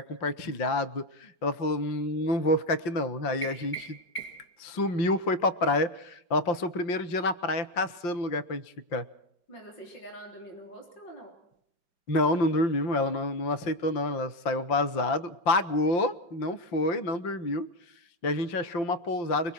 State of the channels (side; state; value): right; late; 5.7 ms